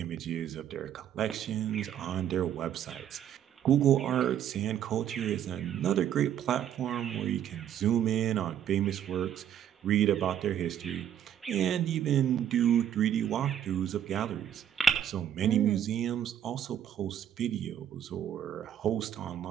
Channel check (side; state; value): left; quieter; 9.9 dB